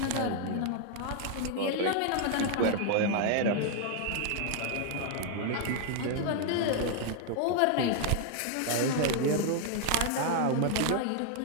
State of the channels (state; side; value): different; both; correlation 0.00